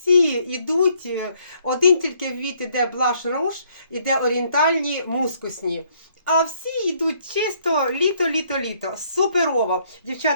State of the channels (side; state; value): both; inverted; correlation -0.67